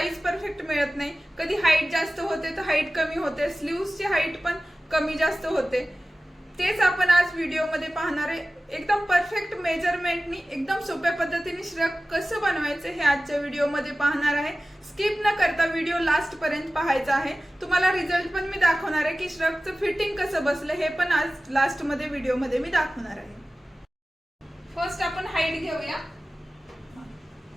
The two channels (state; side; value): normal; both; correlation 0.96